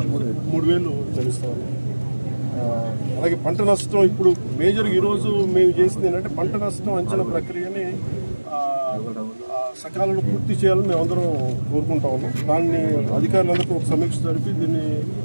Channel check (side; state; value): both; inverted; correlation -1.00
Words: చెల్లిస్తా ఉన్నాం. అలాగే పంట నష్టం ఇప్పుడు మేజర్ ఈరోజు మేము చేసింది ఏంటంటే పంట నష్టం అంచనా ప్రక్రియని సకాలంలో పూర్తి చేయాలని మేము అందరం కోరుకుంటా ఉన్నాం. దాన్ని అధికారులందరికీ ఒక సమీక్ష జరిపి దీన్ని